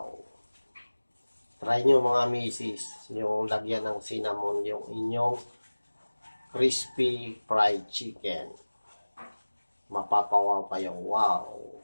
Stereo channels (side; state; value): both; inverted; correlation -1.00